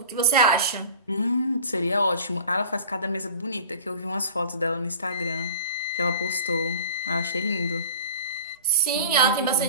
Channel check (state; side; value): inverted; both; correlation -0.39